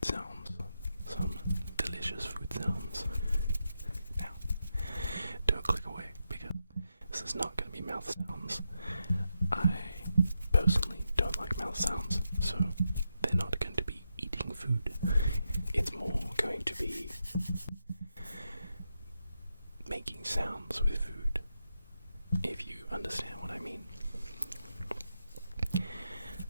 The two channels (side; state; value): both; inverted; correlation -0.85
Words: sounds, some delicious food sounds. Now, don't click away because this is not going to be mouth sounds. I personally don't like mouth sounds, so they're not going to be eating food. It's more going to be making sounds with food, if you understand what I mean.